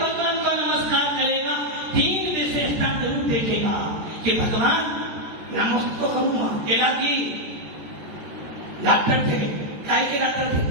को नमस्कार करेगा 3 विशेषता जरूर देखेगा कि भगवान नमस्कार करूंगा। तेरा की डॉक्टर थे, काय के डॉक्टर थे,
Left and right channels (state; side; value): late; left; 14 ms